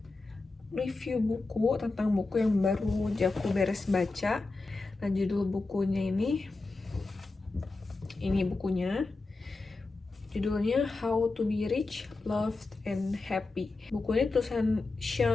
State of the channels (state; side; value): quieter; right; 3.5 dB